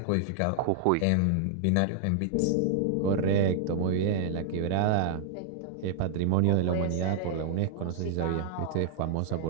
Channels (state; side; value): different; both; correlation -0.01